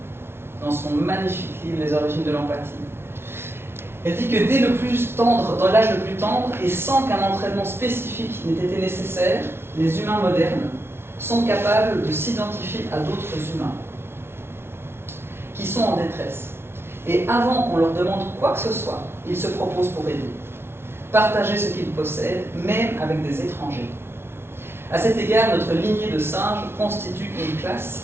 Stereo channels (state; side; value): late; left; 0.12 ms